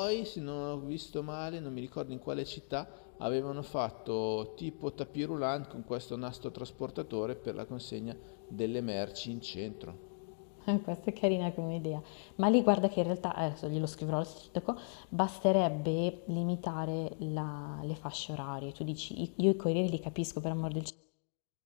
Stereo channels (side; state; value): right; silent; digital silence